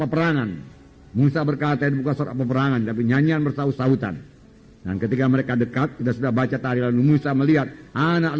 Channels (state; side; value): identical; both; correlation 1.00